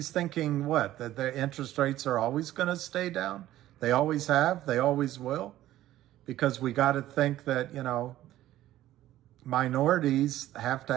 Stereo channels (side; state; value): left; quieter; 14.1 dB